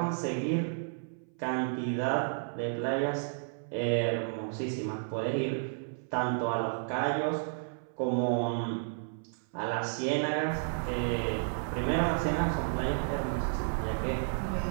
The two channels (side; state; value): left; silent; 56 dB below the other